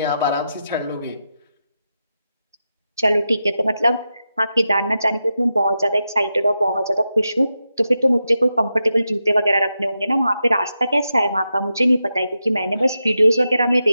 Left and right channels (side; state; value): both; inverted; correlation -0.88